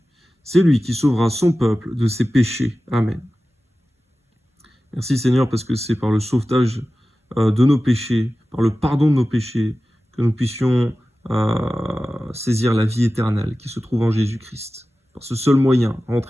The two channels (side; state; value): both; normal; correlation 0.95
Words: C'est lui qui sauvera son peuple de ses péchés. Amen. Merci Seigneur parce que c'est par le sauvetage de nos péchés, par le pardon de nos péchés, que nous puissions saisir la vie éternelle qui se trouve en Jésus-Christ. Par ce seul moyen,